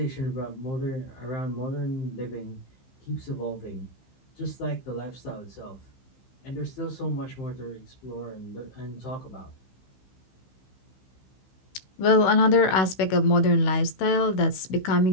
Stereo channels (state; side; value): late; right; 15 ms